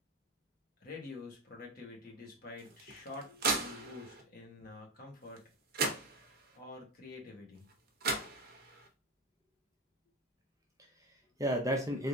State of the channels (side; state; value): both; normal; correlation 0.20